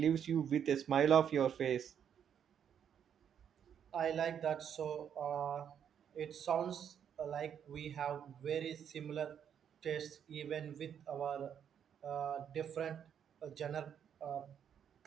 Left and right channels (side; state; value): left; quieter; 8.5 dB